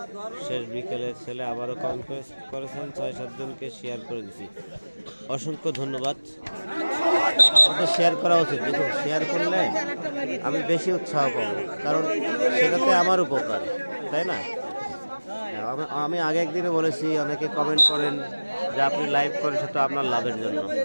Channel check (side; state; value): both; inverted; correlation -1.00